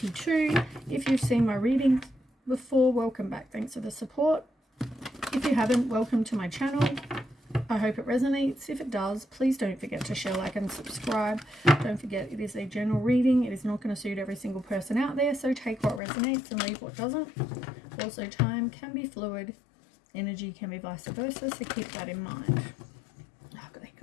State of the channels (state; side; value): drops out; right; at 16.0 s